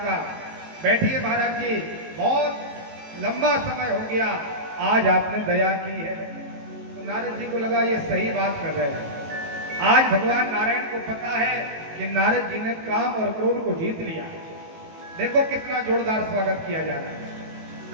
बैठिए महाराज जी, बहुत लंबा समय हो गया, आज आपने दया की है। तो नारद जी को लगा ये सही बात कर रहे हैं। आज भगवान नारायण को पता है कि नारद जी ने काम और क्रोध को जीत लिया। देखो कितना जोरदार स्वागत किया जा रहा है।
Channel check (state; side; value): late; left; 18 ms